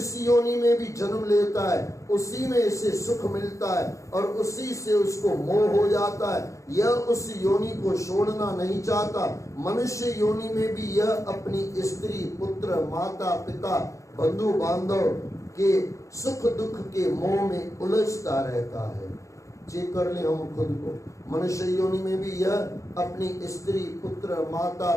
योनि में भी जन्म लेता है उसी में इसे सुख मिलता है और उसी से उसको मोह हो जाता है। यह उस योनि को छोड़ना नहीं चाहता। मनुष्य योनि में भी यह अपनी स्त्री, पुत्र, माता, पिता, बंधु बांधव के सुख दुख के मोह में उलझता रहता है। चेक कर ले हम खुद को। मनुष्य योनि में भी यह अपनी स्त्री, पुत्र, माता,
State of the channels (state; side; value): late; right; 0.15 ms